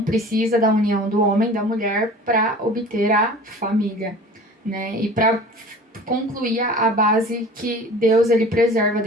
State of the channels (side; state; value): both; normal; correlation 0.42